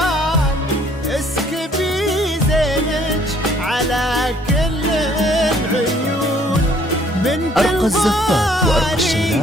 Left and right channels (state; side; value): normal; both; correlation 0.61